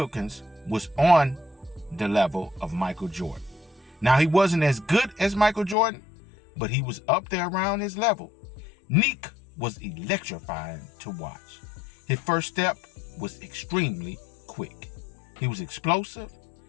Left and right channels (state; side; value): drops out; right; at 5.8 s